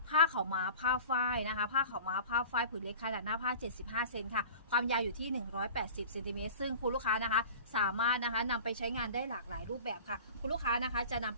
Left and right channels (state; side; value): inverted; both; correlation -0.41